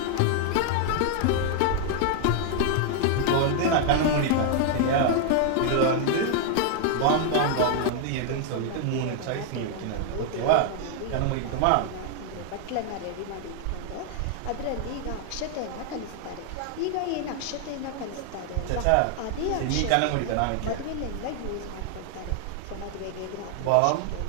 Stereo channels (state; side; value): different; both; correlation 0.00